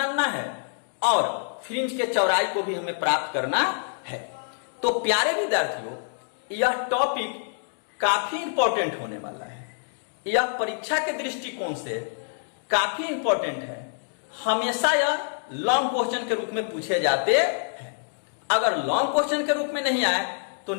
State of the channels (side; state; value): right; silent; digital silence